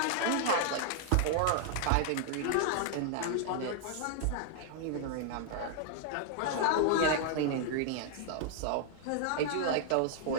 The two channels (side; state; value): both; different; correlation -0.01